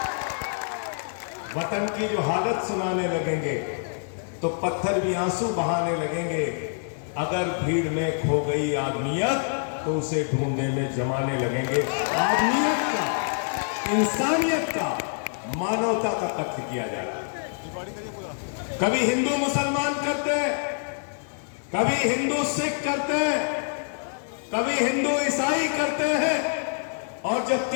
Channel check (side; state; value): right; silent; digital silence